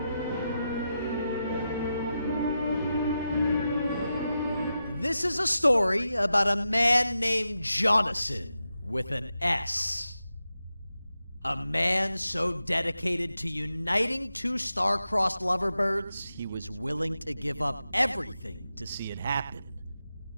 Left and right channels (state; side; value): inverted; both; correlation -0.89